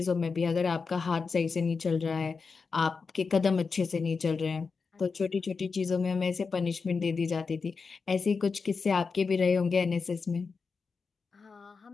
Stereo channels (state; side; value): quieter; right; 4.9 dB